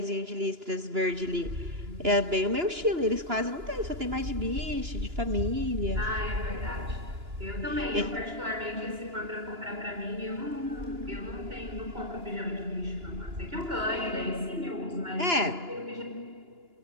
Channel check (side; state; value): left; late; 2.9 ms